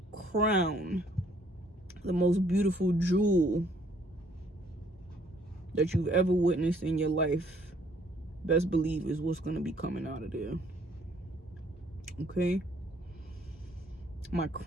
crown, the most beautiful jewel that you've ever witnessed in your life, best believe is what's going to be coming out of there. Okay, my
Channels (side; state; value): both; normal; correlation 0.63